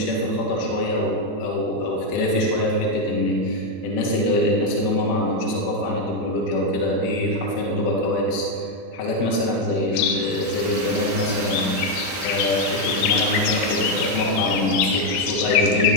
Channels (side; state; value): right; late; 17 ms